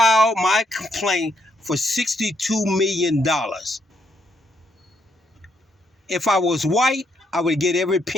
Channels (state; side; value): normal; both; correlation 0.75